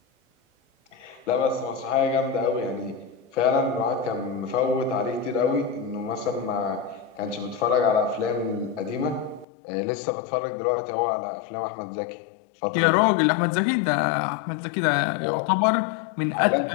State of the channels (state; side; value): drops out; right; at 9.5 s